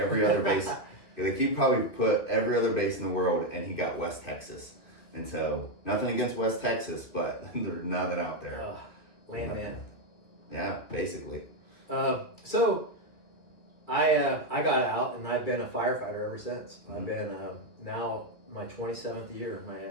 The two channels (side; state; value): right; late; 2.7 ms